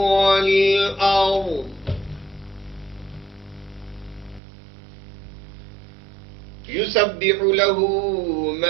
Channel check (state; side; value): drops out; left; at 4.4 s